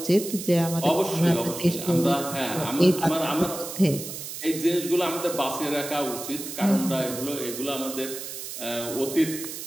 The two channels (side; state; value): right; noise; hiss, 8 dB below the sound